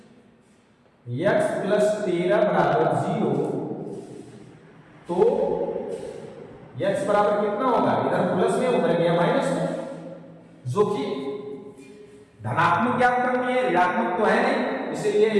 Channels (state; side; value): identical; both; correlation 1.00